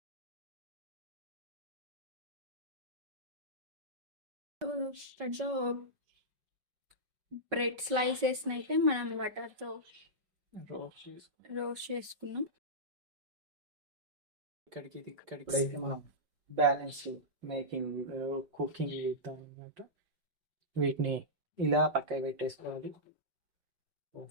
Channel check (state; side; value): late; left; 5.3 ms